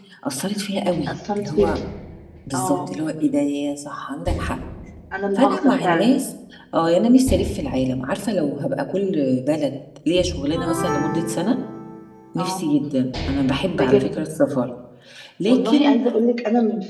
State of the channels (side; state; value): both; identical; correlation 1.00